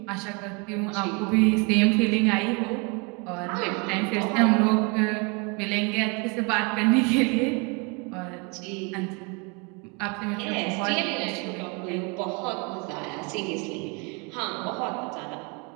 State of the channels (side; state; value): left; quieter; 31.1 dB